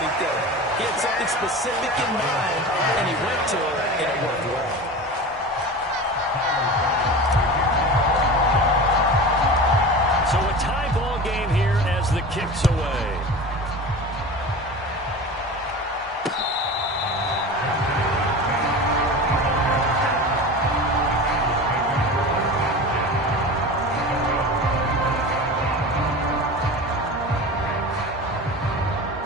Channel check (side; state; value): both; normal; correlation 0.32